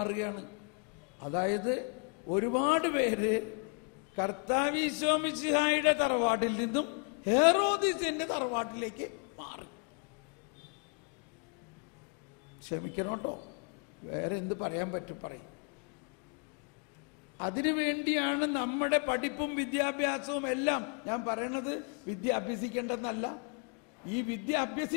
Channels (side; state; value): right; quieter; 38.3 dB